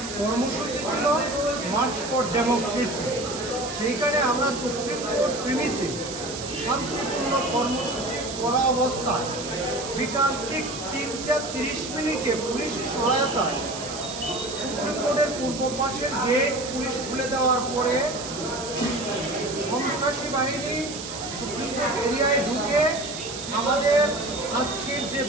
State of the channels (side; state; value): right; noise; hiss, 9 dB below the sound